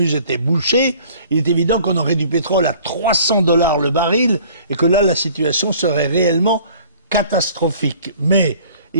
était bouché, il est évident qu'on aurait du pétrole à 300 $ le baril, et que là, la situation serait réellement catastrophique. Mais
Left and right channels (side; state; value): both; inverted; correlation -0.52